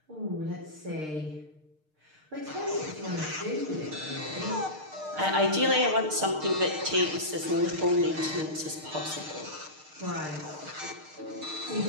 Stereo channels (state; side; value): late; left; 6.5 ms